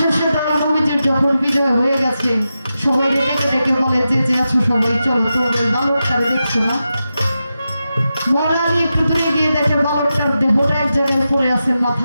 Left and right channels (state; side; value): inverted; both; correlation -0.90